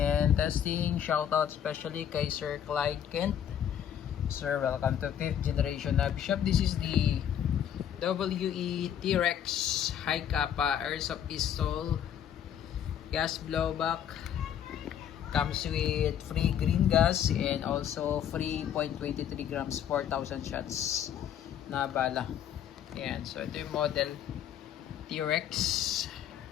testing. Shoutout especially kay Sir Clyde Kent. Sir, welcome to 5th generation Nabi Shop. This is the WE T-Rex High Kappa Airsoft Pistol gas blowback. Comes with free green gas and also free 0.23 grams 4,000 shots na bala. Ayan, so ito yung model T-Rex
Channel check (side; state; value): right; quieter; 9.5 dB